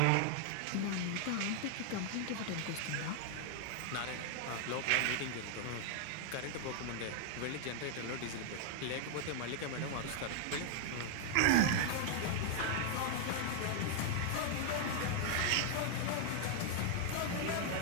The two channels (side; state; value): both; different; correlation 0.00